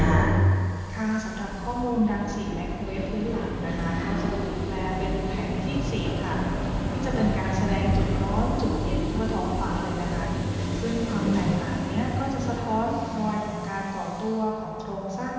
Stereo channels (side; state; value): both; identical; correlation 1.00